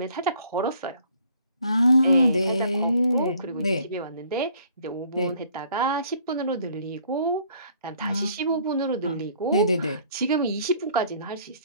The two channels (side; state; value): both; inverted; correlation -0.58